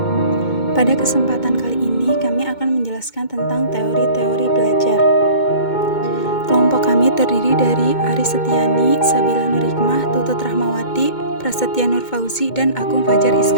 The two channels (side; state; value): right; late; 2.2 ms